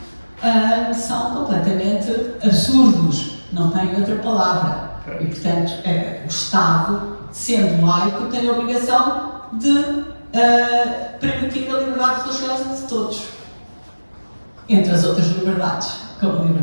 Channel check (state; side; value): inverted; both; correlation -1.00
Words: são completamente absurdos, não têm outra palavra. E, portanto, o Estado, sendo laico, tem a obrigação de permitir a liberdade religiosa de todos, entre as outras liberdades, como a